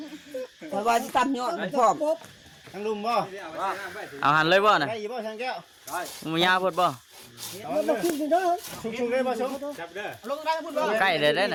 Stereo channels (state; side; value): identical; both; correlation 1.00